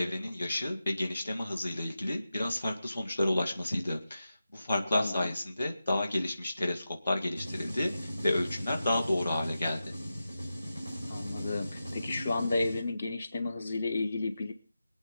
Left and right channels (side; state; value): both; inverted; correlation -0.91